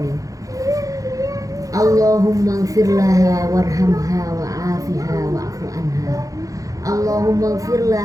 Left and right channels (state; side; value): late; left; 0.17 ms